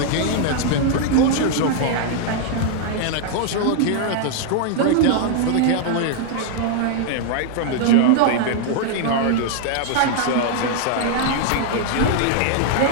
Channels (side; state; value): both; different; correlation 0.00